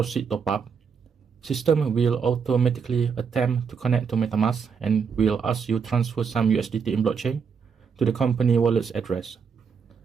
top up, system will automatically attempt to connect to MetaMask and will ask you transfer some USDT in blockchain to the company wallet's address.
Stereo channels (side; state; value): left; quieter; 6.2 dB